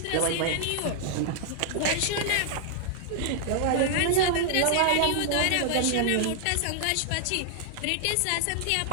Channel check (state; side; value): different; both; correlation 0.00